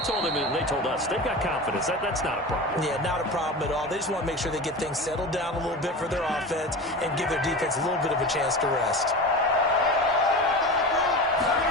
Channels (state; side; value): normal; both; correlation 0.29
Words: told him, and they told us, they've got confidence. That's not a problem. Yeah, not a problem at all. They just want to make sure they get things settled down a little bit for their offense and give their defense a little bit of a chance to rest.